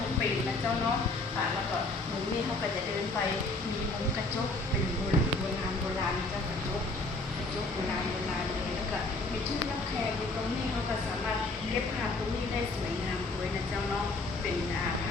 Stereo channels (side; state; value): right; quieter; 3.1 dB